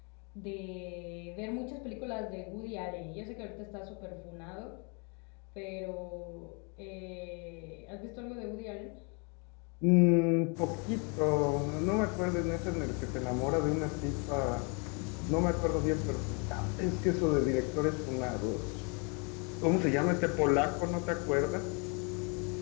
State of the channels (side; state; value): right; quieter; 34.4 dB